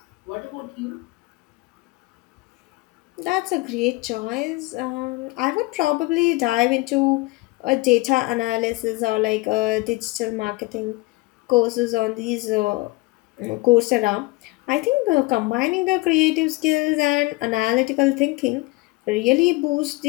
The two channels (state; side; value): quieter; right; 22.5 dB